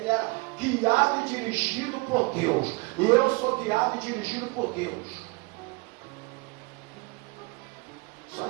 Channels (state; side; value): quieter; left; 26.8 dB